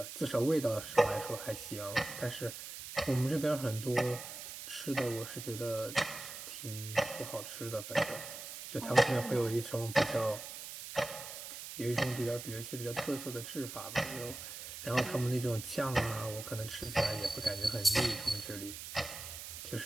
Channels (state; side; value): noise; right; hiss, 10 dB below the sound